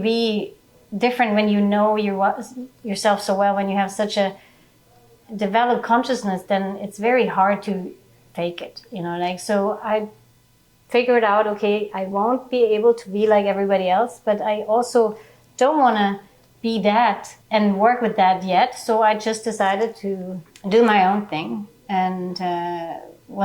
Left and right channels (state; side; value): identical; both; correlation 1.00